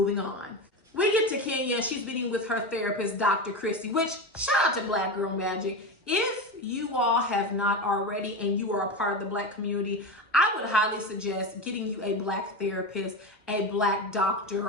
on. We get to Kenya and she's meeting with her therapist, Dr. Christie, which shout out to Black Girl Magic. If you all have not already and you are a part of the Black community, I would highly suggest getting you a Black therapist, a Black doctor,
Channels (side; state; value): both; normal; correlation 0.21